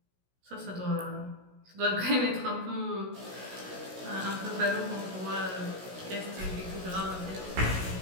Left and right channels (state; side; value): late; left; 16 ms